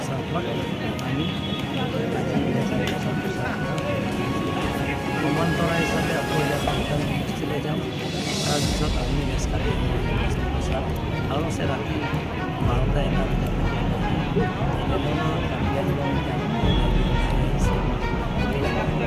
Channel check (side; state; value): both; identical; correlation 1.00